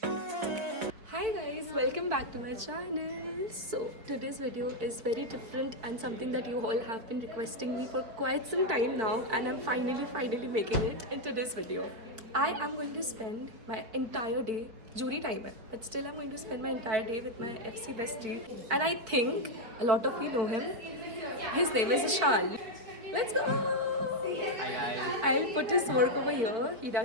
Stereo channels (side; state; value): left; late; 4.7 ms